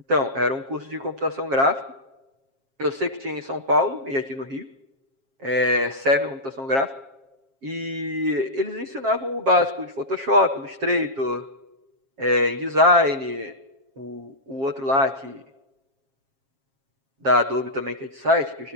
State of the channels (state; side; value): late; left; 7.4 ms